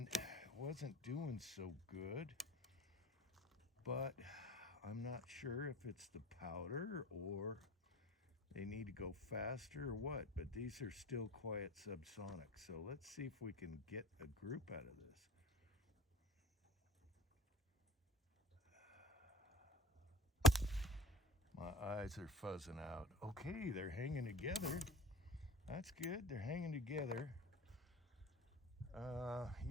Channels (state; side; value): normal; both; correlation 0.40